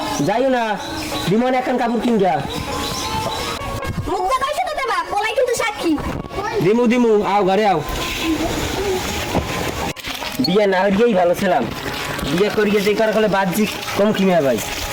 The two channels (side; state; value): both; identical; correlation 1.00